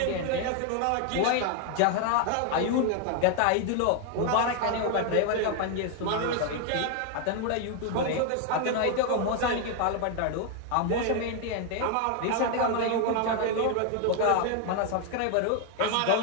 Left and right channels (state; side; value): different; both; correlation 0.00